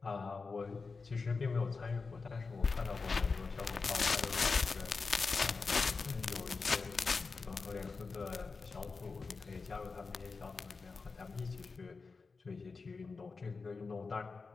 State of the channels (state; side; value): quieter; right; 4.4 dB